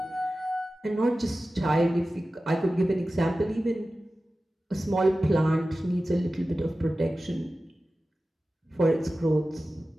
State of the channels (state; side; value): normal; both; correlation 0.95